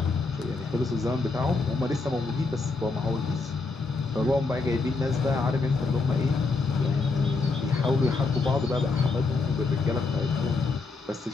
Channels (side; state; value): right; quieter; 3.9 dB